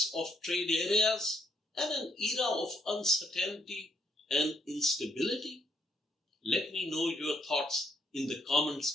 of trade areas, and an era of uncertainty and instability? Let me know your thoughts in the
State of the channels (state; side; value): normal; both; correlation 0.72